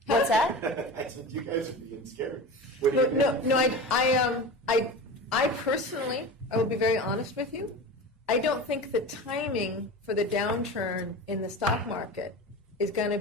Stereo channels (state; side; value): normal; both; correlation 0.30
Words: What's that? I said you guys are being scared. No. I personally, I will be very honest with you. I don't think the timing for the downturn in the stock market is going